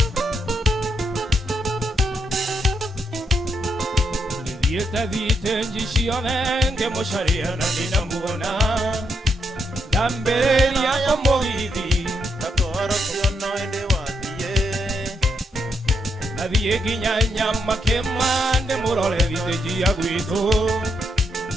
Thiite njicione ngĩmũcaria na ndinamũona ndambĩrĩria kũmũgithi Katwaro kĩono ĩndĩ wathiĩ Nathiĩ nginya Nyamakema ndĩmũrore thitĩnjia gwitũ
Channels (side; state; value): both; normal; correlation 0.79